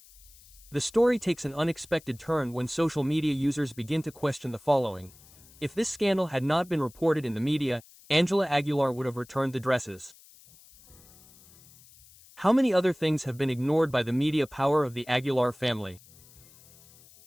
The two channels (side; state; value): left; noise; hiss, 24 dB below the sound